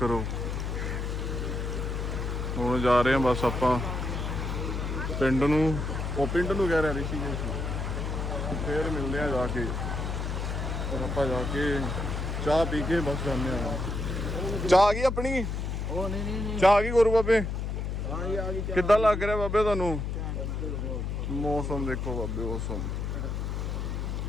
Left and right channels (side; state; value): left; noise; hum, 2 dB below the sound